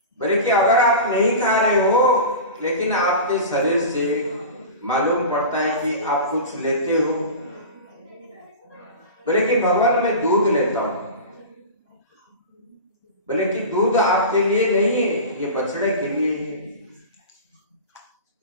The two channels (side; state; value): both; inverted; correlation -0.31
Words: बोले कि अगर आप नहीं खा रहे हो लेकिन आपके शरीर से मालूम पड़ता है कि आप कुछ लेते हो। बोले कि भगवान मैं दूध लेता हूं। बोले कि दूध आपके लिए नहीं है, ये बछड़े के लिए है।